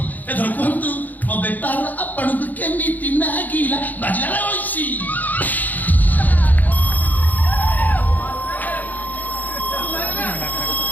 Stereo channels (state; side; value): late; right; 0.083 ms